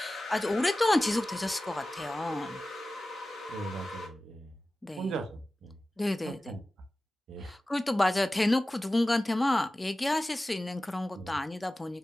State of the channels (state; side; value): normal; both; correlation 0.96